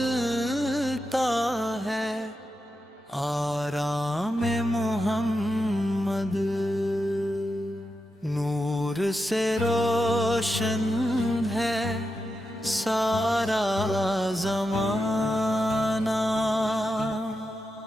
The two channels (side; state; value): both; normal; correlation 0.88